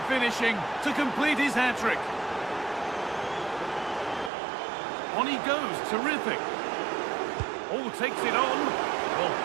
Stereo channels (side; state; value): left; drops out; at 4.3 s